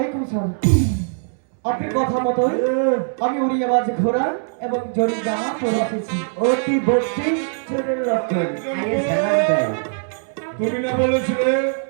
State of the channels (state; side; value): silent; left; 65 dB below the other